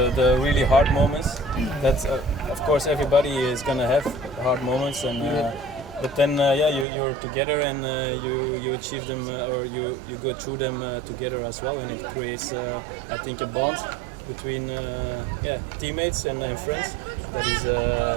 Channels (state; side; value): drops out; left; at 6.9 s